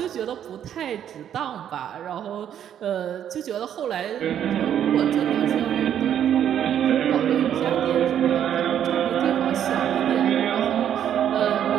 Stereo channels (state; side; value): quieter; left; 9.8 dB